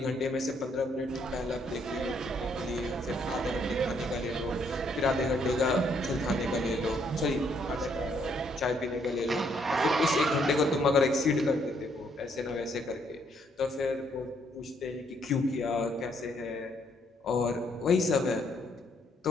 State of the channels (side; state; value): both; normal; correlation 0.70